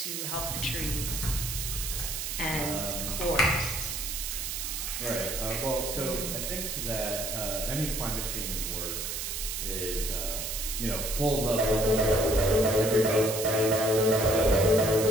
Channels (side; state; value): right; noise; hiss, 4 dB below the sound